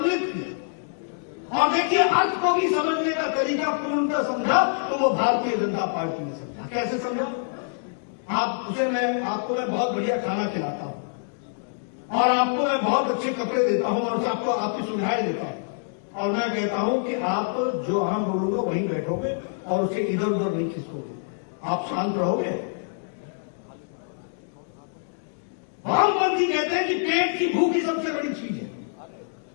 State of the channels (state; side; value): silent; right; digital silence